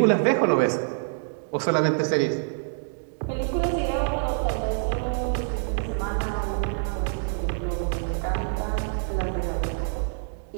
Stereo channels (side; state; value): left; silent; digital silence